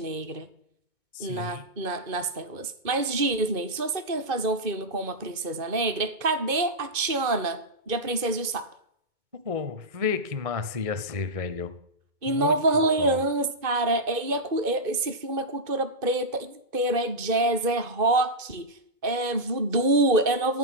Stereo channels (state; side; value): late; left; 2.5 ms